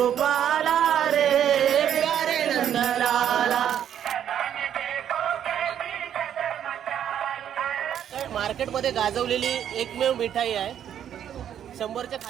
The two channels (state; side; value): quieter; left; 9.7 dB